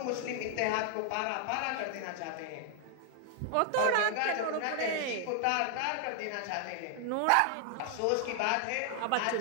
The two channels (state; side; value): different; both; correlation 0.00